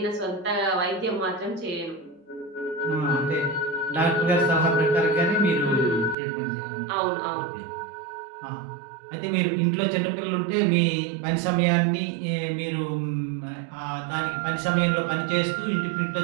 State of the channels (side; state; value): left; drops out; at 6.2 s